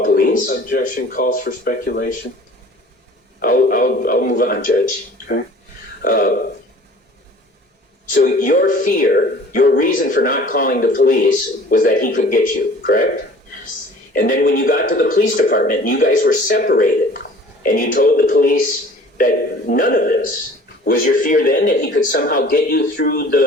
police? Objection calls for speculation. I'll move on, Judge. Okay. So your fear, your reason for not calling the police was that he could get you, correct? Yes. And then when you got to the police department and you guys were separated and you told the police that none of this, was your fear then that he could somehow get you through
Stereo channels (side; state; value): both; normal; correlation 0.48